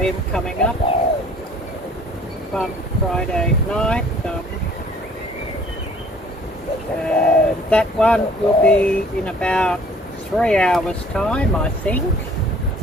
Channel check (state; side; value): normal; both; correlation 0.55